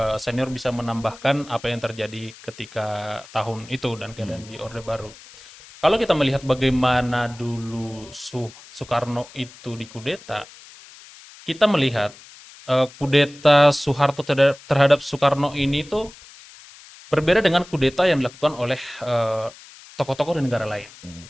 senior bisa menambahkan apa yang terjadi ketika tahun itu dan keadaan di Orde Baru. Kalau kita melihat bagaimana dulu Soekarno itu dikudeta, kita melihat kudeta Soeharto terhadap Soekarno ini tuh berbeda dengan kudeta yang dilakukan oleh tokoh-tokoh di negara lain.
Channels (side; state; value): left; noise; hiss, 20 dB below the sound